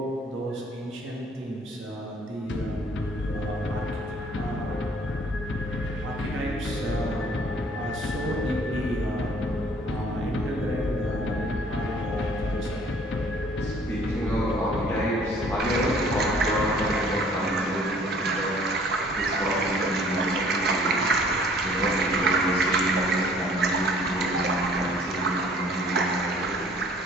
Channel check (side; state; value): both; normal; correlation 0.55